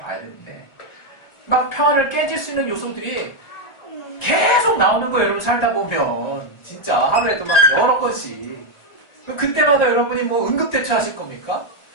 되는데 막 평화를 깨질 수 있는 요소들이 계속 나오는 거예요. 여러분 살다 보면 진짜 하루에도 막 여러 건씩. 그때마다 여러분이 뭐 응급대처 하실 겁니까?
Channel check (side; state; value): right; late; 1.3 ms